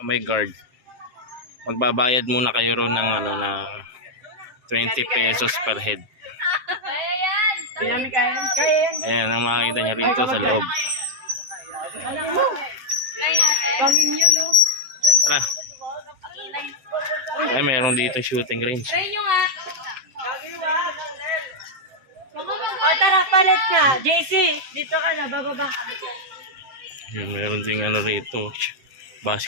may guard. Magbabayad muna kayo ron ng na 20 pesos per head. Ayan ang makikita nyo rito sa loob. Tara. Ay, mayroon dito shooting range. Tara, palit ka. JC, dito ka na, bababa. Ayan, mayroon ding rito,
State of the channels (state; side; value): late; left; 7.7 ms